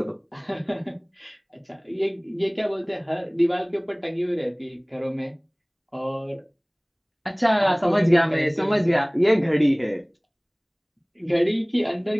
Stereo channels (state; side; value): identical; both; correlation 1.00